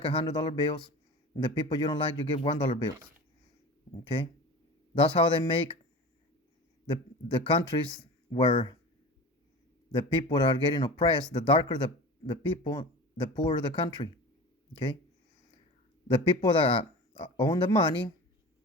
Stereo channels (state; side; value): normal; both; correlation 0.34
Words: $100 bills. And the people you don't like, you give $1 bills. Okay, that's how they make the countries where the people that are getting oppressed. The darker the people, the poorer the country. Okay, the people that own the money,